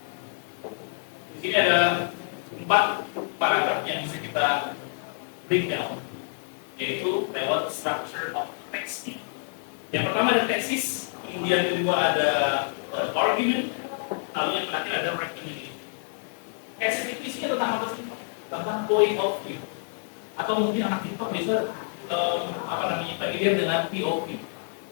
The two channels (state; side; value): silent; right; 60 dB below the other